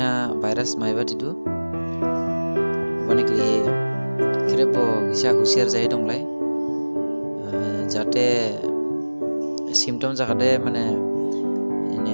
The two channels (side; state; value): both; inverted; correlation -1.00